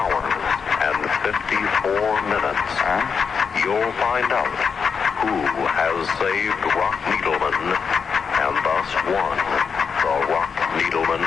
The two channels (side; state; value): right; quieter; 6.1 dB